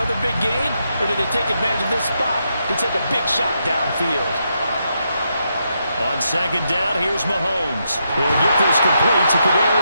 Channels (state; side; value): inverted; both; correlation -0.81